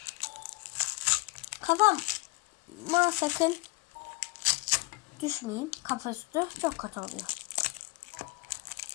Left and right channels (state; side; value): quieter; right; 23.1 dB